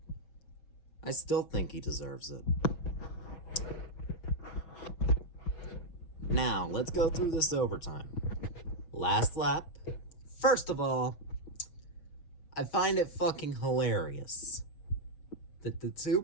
I still think he deserves it. Now, let's go through this overtime. Last lap. First of all, I find it fucking hilarious that the two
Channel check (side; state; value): right; late; 6.2 ms